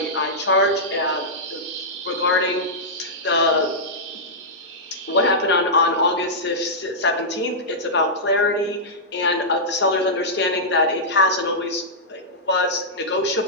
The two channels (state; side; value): normal; both; correlation -0.12